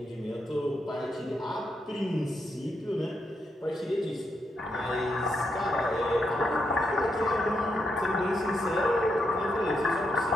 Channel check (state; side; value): normal; both; correlation 0.81